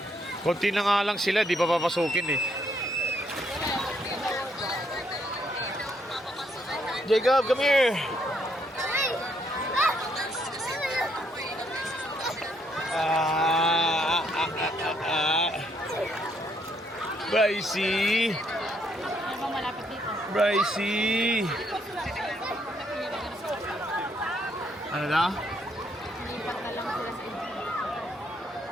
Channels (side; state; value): both; normal; correlation 0.72